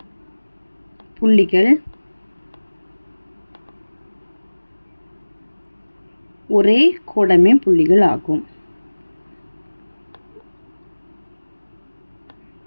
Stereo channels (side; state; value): both; inverted; correlation -1.00